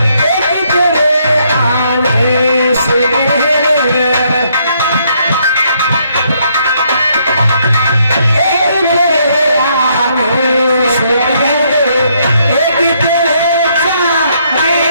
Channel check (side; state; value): both; inverted; correlation -0.71